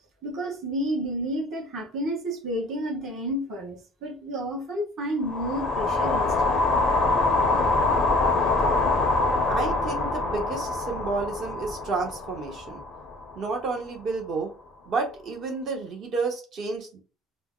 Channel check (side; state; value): both; normal; correlation 0.50